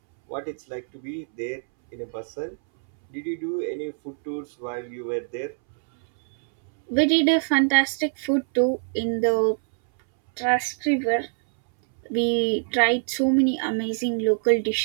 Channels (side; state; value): left; silent; 62 dB below the other